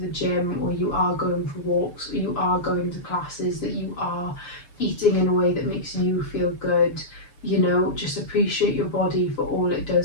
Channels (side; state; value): right; late; 6.9 ms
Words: gym, or you are going for walks, or you are going to classes, that you are eating in a way that makes you feel good. You know, just appreciate your body for all it